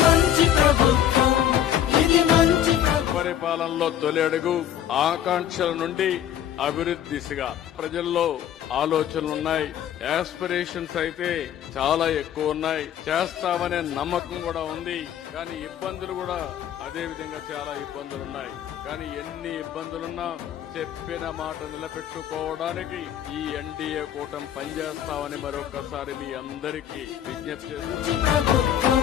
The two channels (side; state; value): right; quieter; 10.4 dB